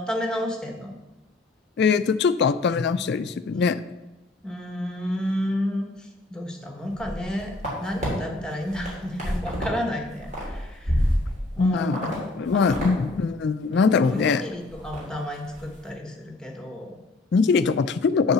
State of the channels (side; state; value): right; quieter; 3.3 dB